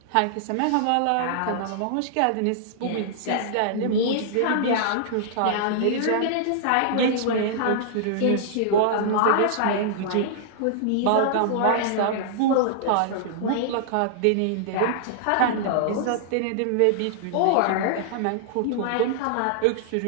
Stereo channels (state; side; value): different; both; correlation -0.01